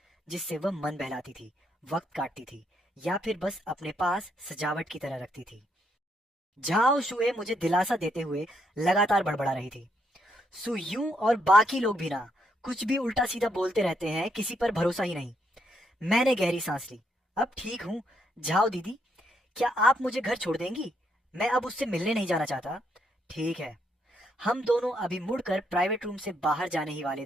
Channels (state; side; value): normal; both; correlation 0.75